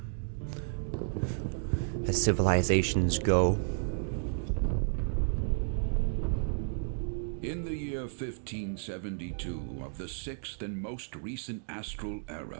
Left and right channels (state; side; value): silent; left; digital silence